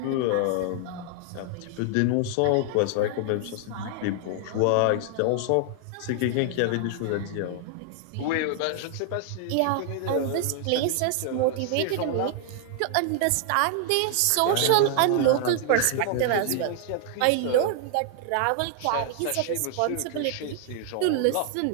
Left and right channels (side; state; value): both; different; correlation 0.00